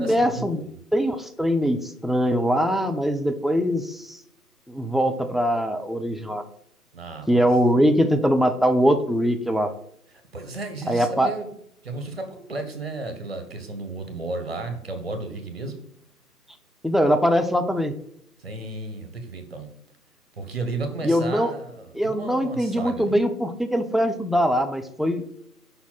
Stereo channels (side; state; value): both; normal; correlation 0.82